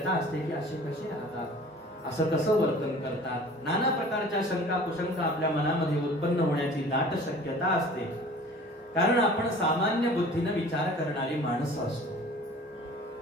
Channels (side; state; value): both; normal; correlation 0.46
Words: असते की असे कसे राहतात, असं कसं वर्तन करतात. नाना प्रकारच्या शंका कुशंका आपल्या मनामध्ये उत्पन्न होण्याची दाट शक्यता असते. कारण आपण सामान्य बुद्धीने विचार करणारी माणसं असतो.